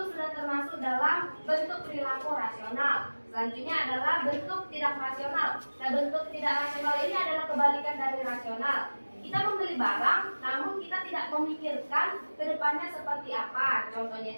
sudah termasuk dalam bentuk perilaku rasional. Selanjutnya adalah bentuk tidak rasional. Nah, bentuk tidak rasional ini adalah kebalikan dari rasional. Kita membeli barang, namun kita tidak memikirkan ke depannya seperti apa.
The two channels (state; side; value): inverted; both; correlation -1.00